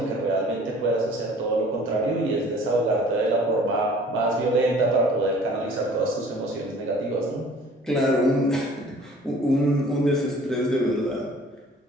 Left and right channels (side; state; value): both; normal; correlation 0.51